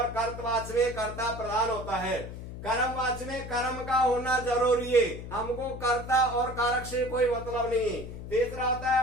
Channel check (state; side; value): noise; left; hum, 10 dB below the sound